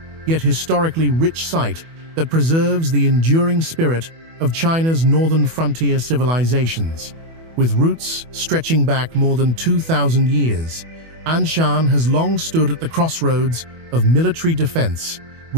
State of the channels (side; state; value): left; late; 24 ms